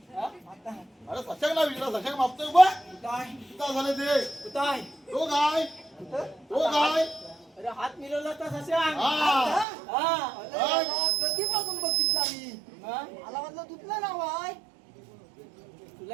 हा? आता अरे सशक ना विचारा, सशक मापतोय बा. काय किती झाले ते? काय तो काय? तो काय? अरे हात मिळवला तर सशांक. हा. कधीपासून बघितला मी. मला वाटलं तुझलं नाव आहे. तुला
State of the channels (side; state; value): left; drops out; at 9.7 s